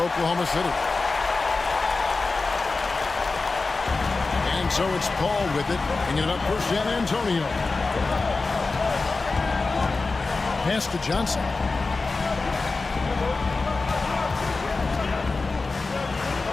City. And so it's Paul with it, bringing it up for San Antonio. Pass to Johnson.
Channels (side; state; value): right; quieter; 3.8 dB